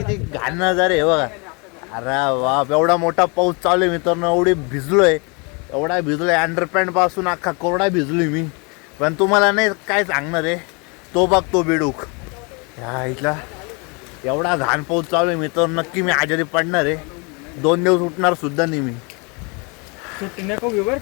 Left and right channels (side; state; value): right; quieter; 31.7 dB